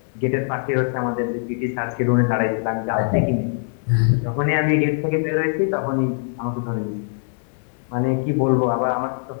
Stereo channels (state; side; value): silent; right; 64 dB below the other